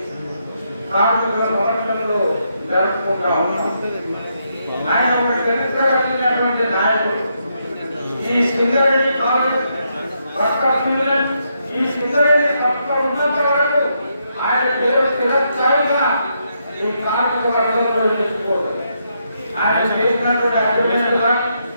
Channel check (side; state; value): both; inverted; correlation -0.79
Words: కార్మికుల సమస్యలు జరుపుకుంటా ఉన్నాం. ఆయన ఒక చరిత్ర కలిగినటువంటి నాయకుడు. ఈ సింగరేణి కాలేజ్ ఈ సింగరేణి సంస్థ ఉన్నంత వరకు ఆయన పేరు చిరస్థాయిగా ఈ కార్మిక వర్గంలో నిలుచుకోవడం. ఆయన చేసినటువంటి అభివృద్ధి కానీ